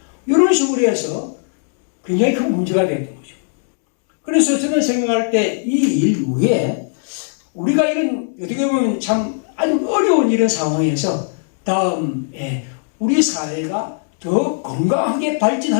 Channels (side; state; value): right; silent; 67 dB below the other